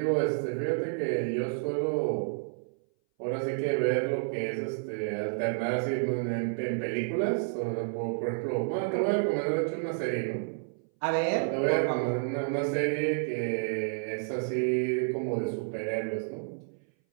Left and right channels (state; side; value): silent; left; 58 dB below the other